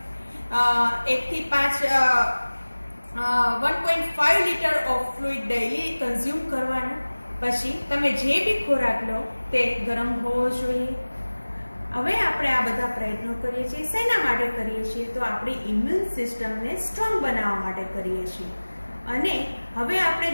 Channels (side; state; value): both; inverted; correlation -1.00